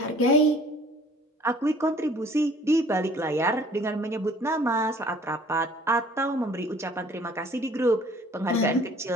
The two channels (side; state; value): both; normal; correlation 0.54